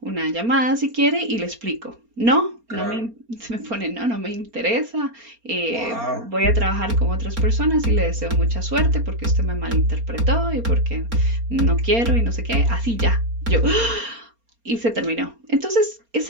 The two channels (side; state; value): left; late; 4.3 ms